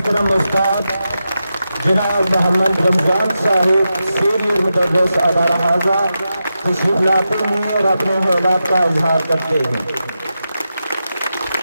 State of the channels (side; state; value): both; inverted; correlation -0.89